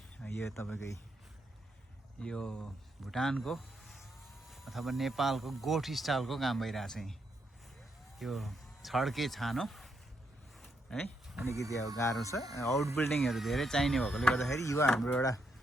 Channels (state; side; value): normal; both; correlation 0.79